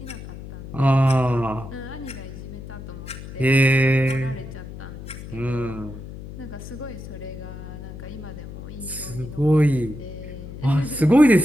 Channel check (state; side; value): noise; left; hum, 12 dB below the sound